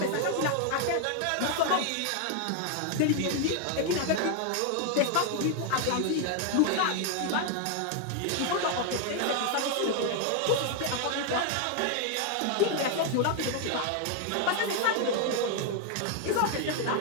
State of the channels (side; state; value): both; different; correlation 0.00